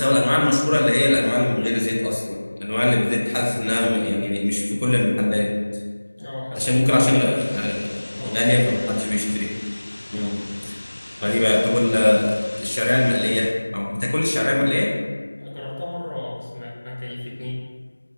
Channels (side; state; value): both; inverted; correlation -1.00